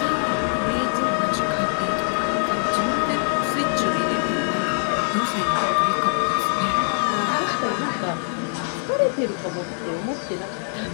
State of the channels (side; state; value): right; silent; digital silence